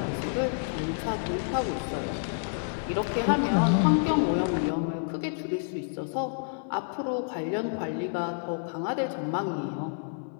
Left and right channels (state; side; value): silent; right; 59 dB below the other